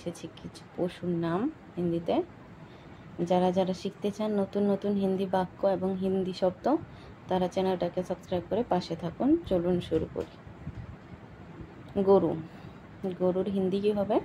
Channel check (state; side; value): identical; both; correlation 1.00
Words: কিছু পশুর নাম হিন্দিতে। যারা যারা শিখতে চান নতুন নতুন হিন্দি বাক্য এবং হিন্দি শব্দ, তারা চ্যানেলটাকে সাবস্ক্রাইব করে পাশে থাকুন। চলুন শুরু করি। গরু। গরুর হিন্দি কি হবে?